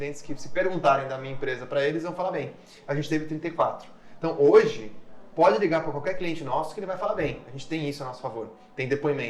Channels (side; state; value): both; identical; correlation 1.00